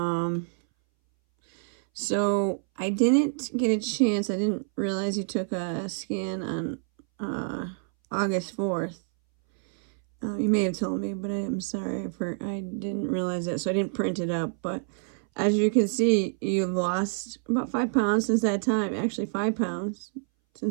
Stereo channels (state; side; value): silent; left; 59 dB below the other